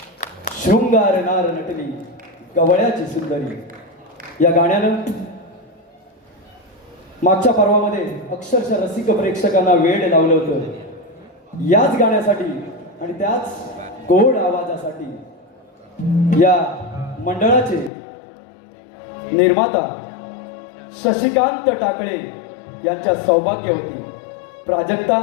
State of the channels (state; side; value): drops out; right; at 17.9 s